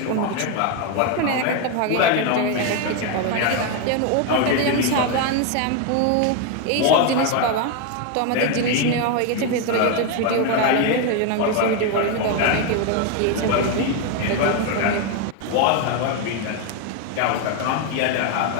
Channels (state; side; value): different; both; correlation 0.02